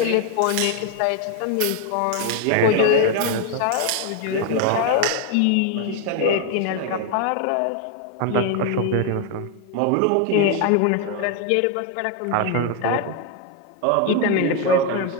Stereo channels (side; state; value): both; different; correlation 0.01